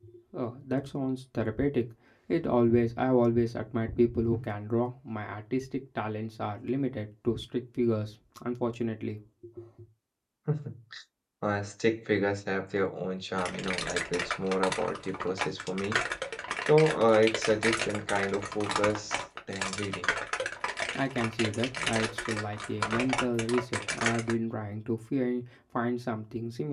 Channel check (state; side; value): identical; both; correlation 1.00